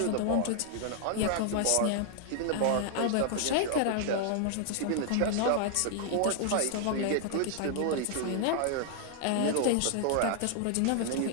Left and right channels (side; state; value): both; different; correlation 0.00